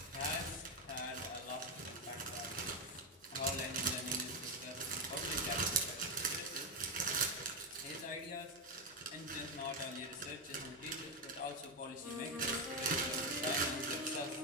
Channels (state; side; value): normal; both; correlation 0.08